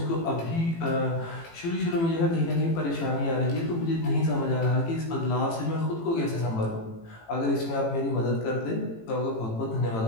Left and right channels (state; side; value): late; right; 18 ms